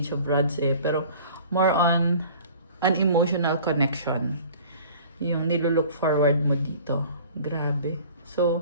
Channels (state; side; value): inverted; both; correlation -0.46